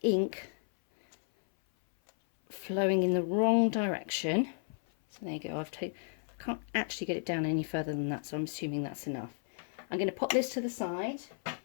ink flowing in the wrong direction. So there you go. I can't actually get it down any further than that, so I'm assuming that's enough. I'm going to pop this to the side. I'm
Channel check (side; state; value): right; silent; 56 dB below the other